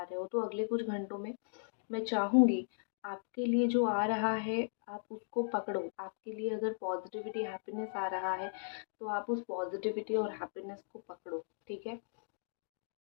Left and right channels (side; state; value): right; silent; digital silence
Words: रहे हो। तो अगले कुछ घंटों में मैं चाहूँगी आपके लिए जो आ रहा है, आप उसको पकड़ो। आपके लिए अगर पॉज़िटिविटी, हैप्पीनेस आ रहा है, तो आप उस पॉज़िटिविटी और हैप्पीनेस को पकड़ो, ठीक है?